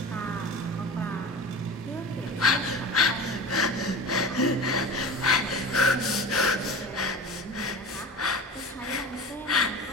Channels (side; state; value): both; normal; correlation 0.34